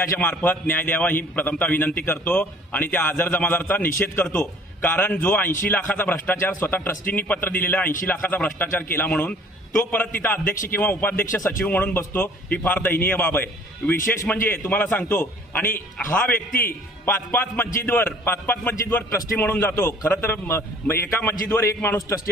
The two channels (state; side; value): normal; both; correlation 0.53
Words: मार्फत न्याय द्यावा ही प्रथमतः विनंती करतो आणि त्या आझर जमादारचा निषेध करतो। कारण जो 80 लाखाचा भ्रष्टाचार स्वतः ट्रस्टींनी पत्र दिलेला 80 लाखाचा भ्रष्टाचार केला म्हणून तो परत तिथं अध्यक्ष किंवा उपाध्यक्ष सचिव म्हणून बसतो, ही फार दयनीय बाब आहे। विशेष म्हणजे तुम्हाला सांगतो, आणि हा व्यक्ती पाच मस्जिदवर ट्रस्टी म्हणून जातो। खरं तर एका मस्जिदवर एक माणूस